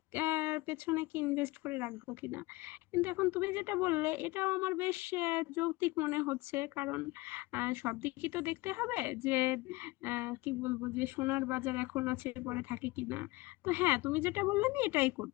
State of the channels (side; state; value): right; quieter; 21.8 dB